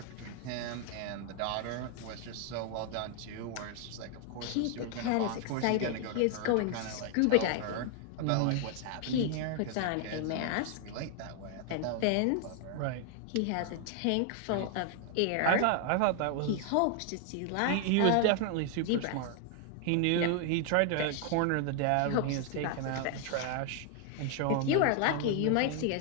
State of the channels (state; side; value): different; both; correlation 0.00